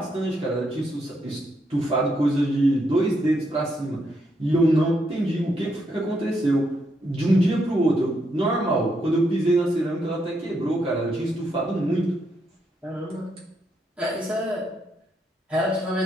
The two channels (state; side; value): normal; both; correlation 0.78